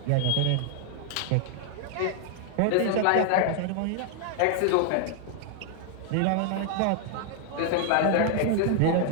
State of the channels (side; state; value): both; different; correlation 0.00